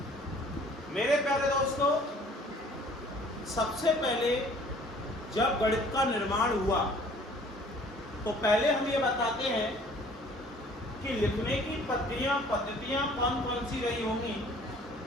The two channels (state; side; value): normal; both; correlation 0.53